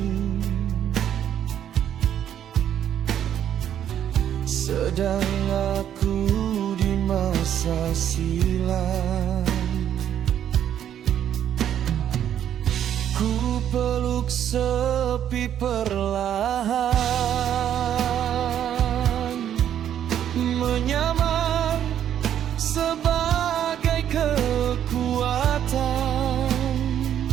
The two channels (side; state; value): left; quieter; 10.1 dB